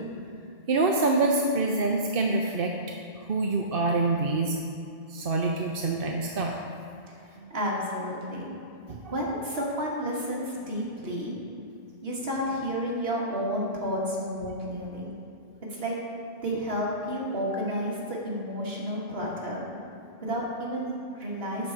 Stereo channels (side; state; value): left; late; 1.7 ms